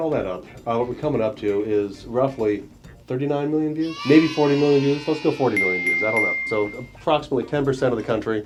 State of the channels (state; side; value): identical; both; correlation 1.00